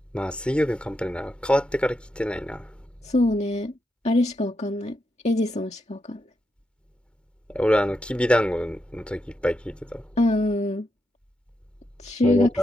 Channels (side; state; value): both; normal; correlation 0.84